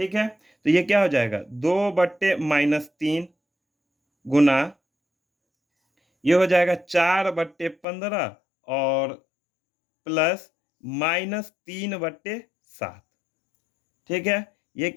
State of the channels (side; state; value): right; drops out; at 7.9 s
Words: है, तो ये क्या हो जाएगा, 2/-3 गुना, ये हो जाएगा 4/15 और प्लस -3/7। ठीक है, ये